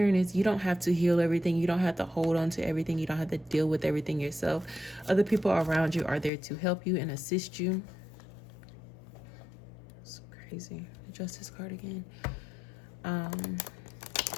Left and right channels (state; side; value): drops out; right; at 6.3 s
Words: is you don't have to heal everything. You don't have to hold on to everything. You don't have to deal with everything yourself. Other people around you are there to help you and assist you. It's crazy. The Justice card again.